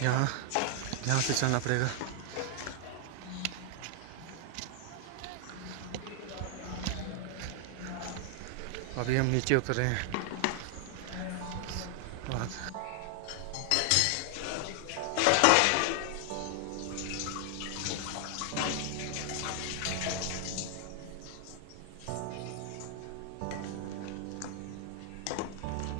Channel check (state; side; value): different; both; correlation 0.00